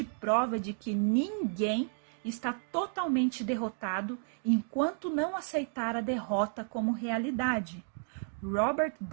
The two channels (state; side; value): silent; left; 56 dB below the other